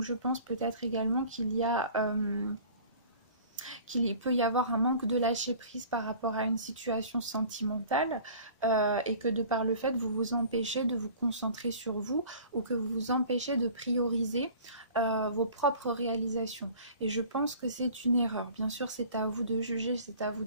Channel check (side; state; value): both; inverted; correlation -0.46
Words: je pense peut-être également qu'il peut y avoir un manque de lâcher prise par rapport à une situation sentimentale et que de par le fait vous vous empêchez de vous concentrer sur vous ou que vous vous empêchez de prioriser vos propres réalisations. Et je pense que c'est une erreur. Bien sûr, c'est à vous de juger, c'est à vous